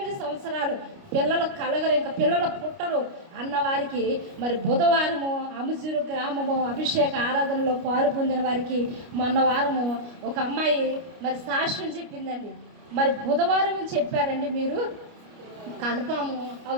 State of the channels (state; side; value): late; left; 29 ms